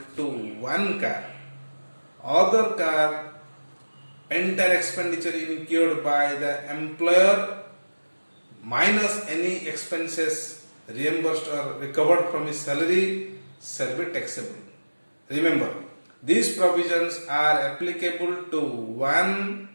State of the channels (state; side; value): inverted; both; correlation -1.00